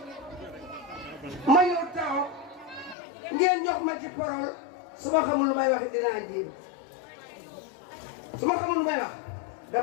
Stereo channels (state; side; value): drops out; right; at 3.0 s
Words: ma ñëw taxaw ngeen jox ma ci parole su ma xamul lu may wax dinaa jéem su ma xamul lu may wax